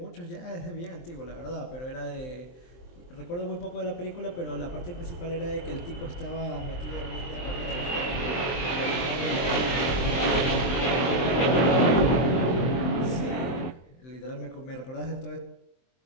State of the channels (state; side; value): late; right; 23 ms